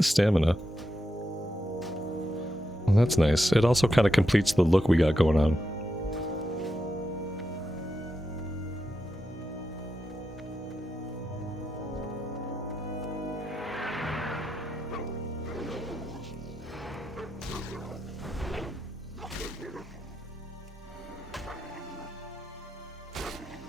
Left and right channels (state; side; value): normal; both; correlation 0.86